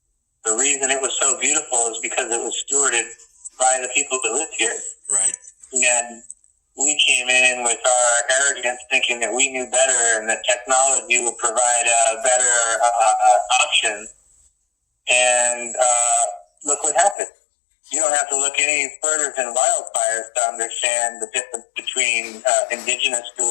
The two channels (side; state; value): right; drops out; at 17.2 s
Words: The reason it was so beautiful is because it was stewarded by the people that lived here. Right. And we came in with our arrogance thinking that we knew better and that technology would provide a better option. And look what happened. You don't have to look any further than wildfires to understand the difference between indigenous